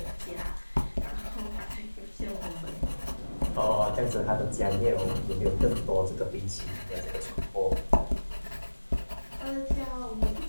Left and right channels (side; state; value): both; inverted; correlation -1.00